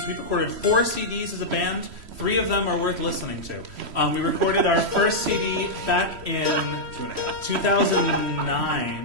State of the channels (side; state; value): left; late; 3.1 ms